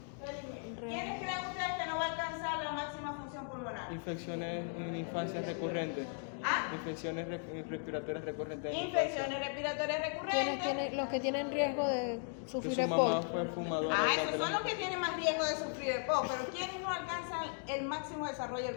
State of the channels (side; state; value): right; silent; 53 dB below the other